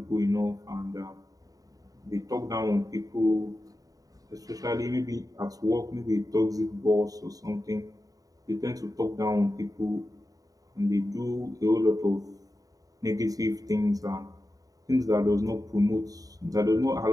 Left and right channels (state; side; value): late; left; 0.18 ms